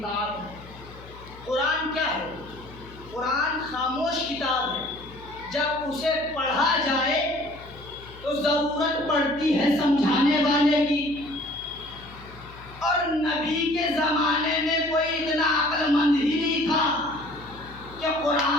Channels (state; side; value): noise; left; hum, 19 dB below the sound